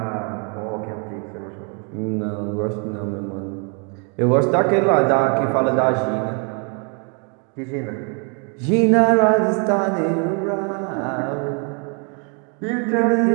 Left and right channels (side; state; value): left; quieter; 37.5 dB